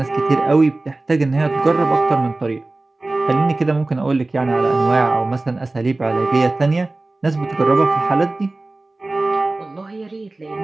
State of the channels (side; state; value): left; quieter; 3.0 dB